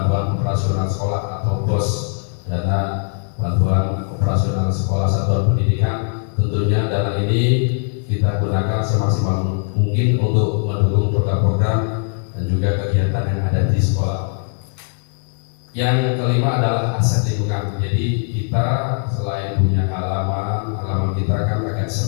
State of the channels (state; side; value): silent; right; 58 dB below the other